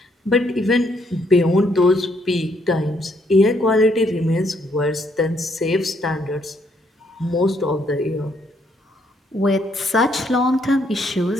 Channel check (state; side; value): normal; both; correlation 0.71